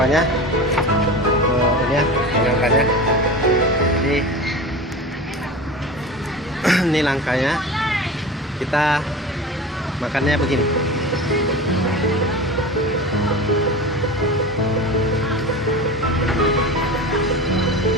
Ini ya, nangkanya. Ini nangkanya. Kita makannya begini.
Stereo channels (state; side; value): normal; both; correlation 0.31